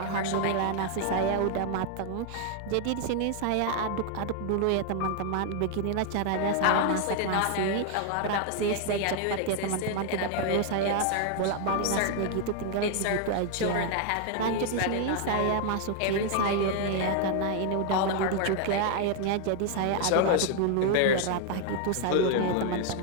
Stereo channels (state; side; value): different; both; correlation 0.00